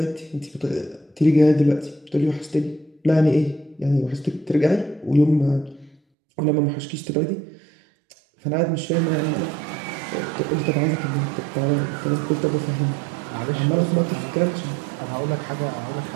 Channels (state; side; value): drops out; left; at 6.0 s